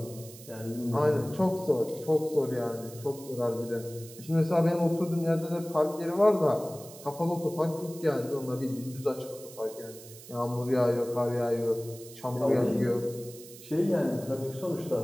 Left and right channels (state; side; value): noise; right; hiss, 17 dB below the sound